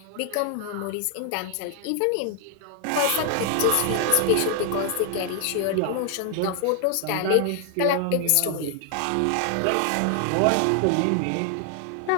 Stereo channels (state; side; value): different; both; correlation 0.00